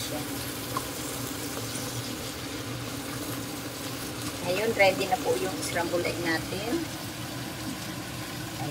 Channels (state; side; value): identical; both; correlation 1.00